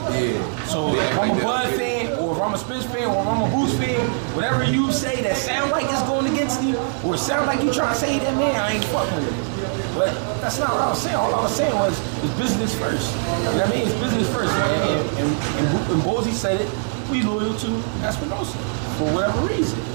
Yeah. So if I'm a Bud fan, or if I'm a Spence fan, or if I'm a Boots fan, whatever you say that sound like it's going against him, or sound like you trying to say that man, I ain't fucking with it. But that's not what I was saying. All I was saying was it's business first. You know what I mean? It's business first. And Bozzy said it. We loyal to Espinosa for whatever reason,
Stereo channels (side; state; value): left; silent; digital silence